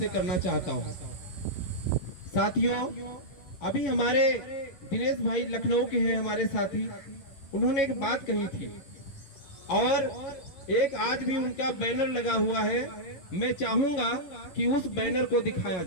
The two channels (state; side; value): late; right; 11 ms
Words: करना चाहता हूं। साथियों, अभी हमारे दिनेश भाई लखनऊ के हैं हमारे साथी, उन्होंने एक बात कही थी और एक आज भी उनका बैनर लगा हुआ है। मैं चाहूंगा कि उस बैनर को दिखाया